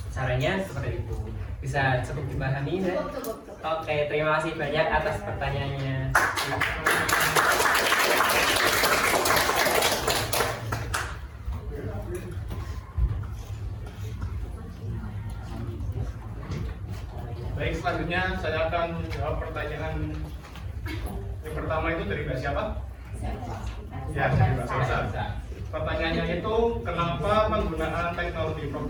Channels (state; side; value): identical; both; correlation 1.00